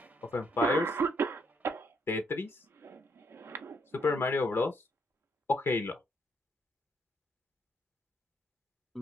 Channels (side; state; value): both; normal; correlation 0.73